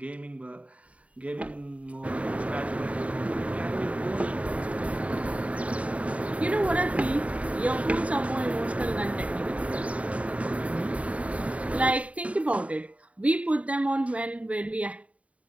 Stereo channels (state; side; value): late; left; 0.066 ms